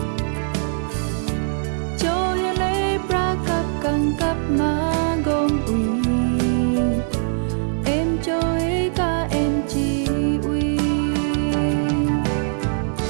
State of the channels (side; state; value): left; silent; 59 dB below the other